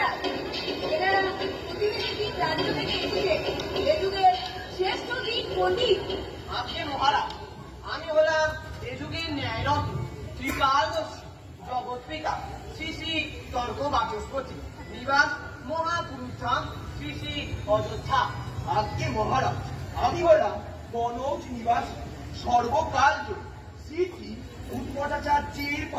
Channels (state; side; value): identical; both; correlation 1.00